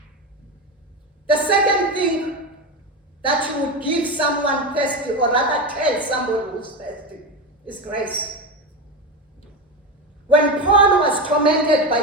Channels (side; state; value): both; normal; correlation 0.18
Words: The second thing that you would give someone thirsty, or rather tell somebody who's thirsty, is grace. When Paul was tormented by